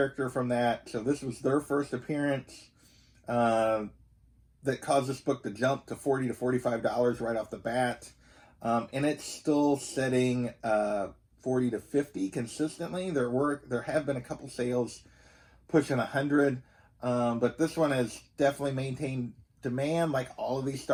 from that. So this was their first appearance that caused this book to jump to $40 to $45 right off the bat. And it's still setting $40 to $50 consistently. There have been a couple sales pushing $100. But this one has definitely maintained demand. Like all of these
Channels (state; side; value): identical; both; correlation 1.00